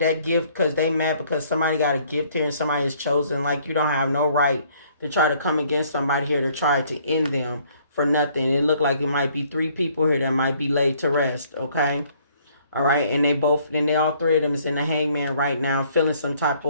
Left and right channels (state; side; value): inverted; both; correlation -0.62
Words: gift, because they mad because somebody got a gift here and somebody is chosen. Like, you don't have no right to try to come against somebody here to try to end them for nothing. It looked like it might be 3 people here that might be laid to rest. Okay. All right. And they all 3 of them is in the hangman right now, feeling some type